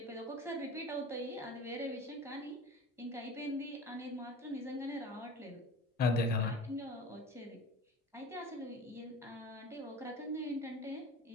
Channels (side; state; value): both; normal; correlation 0.38